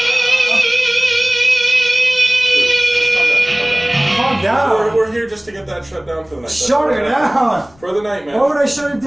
Calm down. We're here just to get that shut down for the night. Shut it down. For the night, man. Why would I shut it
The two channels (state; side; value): noise; left; rumble, 29 dB below the sound